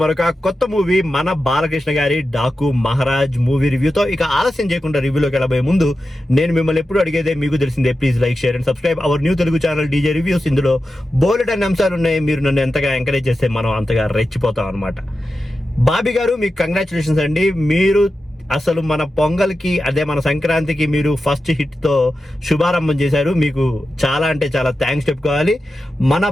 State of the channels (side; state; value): both; normal; correlation 0.91